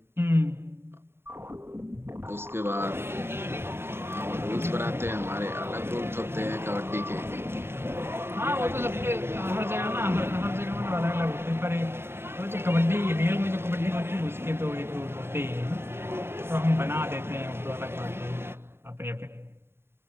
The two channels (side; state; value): left; late; 0.11 ms